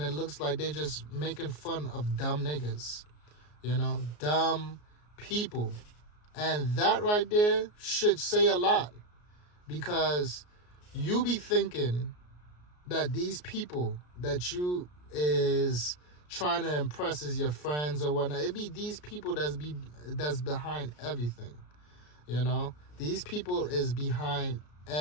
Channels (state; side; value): late; right; 33 ms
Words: it looks like they just making fun of dumb niggas, dumb people. And that right there should say a lot, because you be thinking that these people that you is trying to impress as your friends or whatnot, it be these people that's behind everything. These people is behind